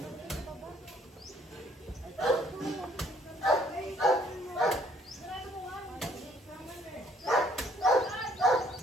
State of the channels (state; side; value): normal; both; correlation 0.63